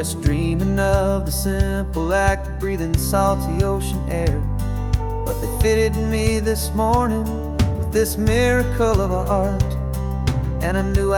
dreaming of the simple act of breathing salty ocean air. But they fitted me this morning with this miracle of art, and I knew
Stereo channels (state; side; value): identical; both; correlation 1.00